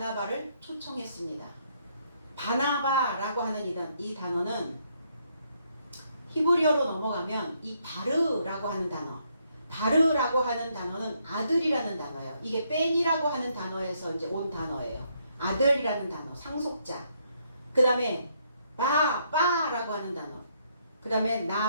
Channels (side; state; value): both; inverted; correlation -0.73